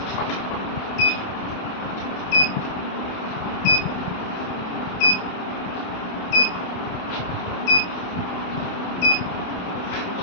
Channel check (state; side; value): late; right; 28 ms